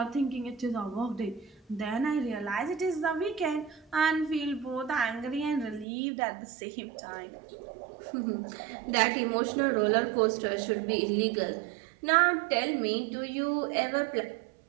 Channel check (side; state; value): left; drops out; at 5.9 s